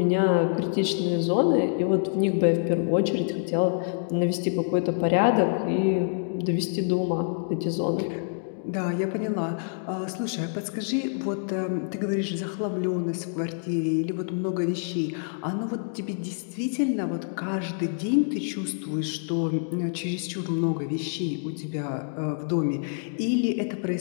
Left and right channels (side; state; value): right; silent; digital silence